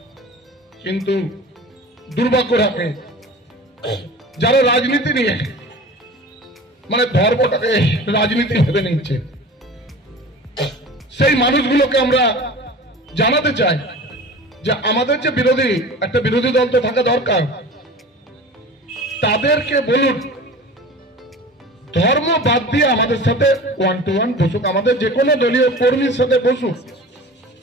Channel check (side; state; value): both; normal; correlation 0.38